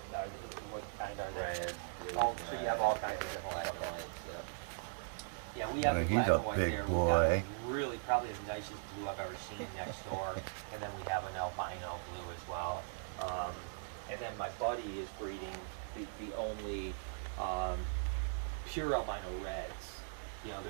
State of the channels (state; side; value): silent; left; digital silence